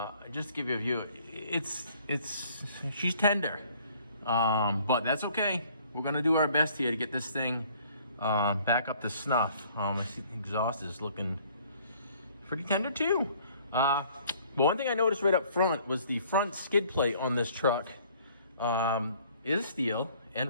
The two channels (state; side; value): inverted; both; correlation -0.58